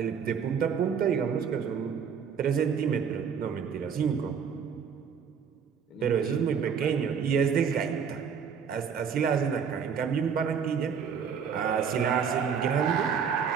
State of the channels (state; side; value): quieter; left; 6.9 dB